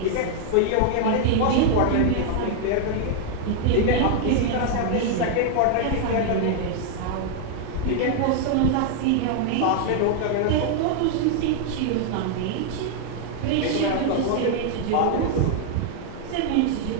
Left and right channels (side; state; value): both; different; correlation 0.00